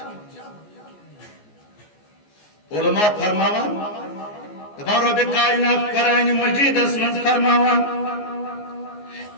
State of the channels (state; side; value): late; right; 14 ms